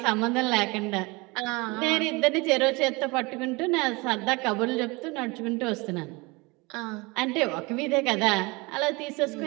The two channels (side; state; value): left; quieter; 25.4 dB